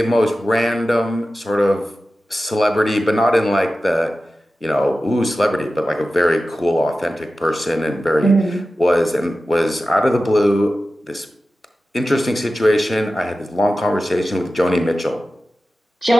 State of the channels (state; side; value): normal; both; correlation 0.94